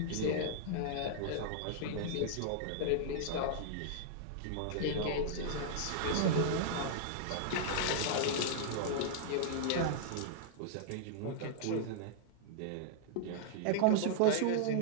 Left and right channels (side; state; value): both; different; correlation -0.01